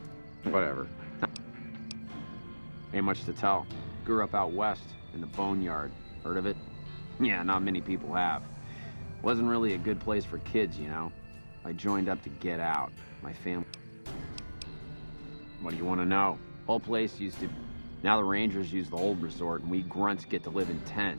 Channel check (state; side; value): inverted; both; correlation -1.00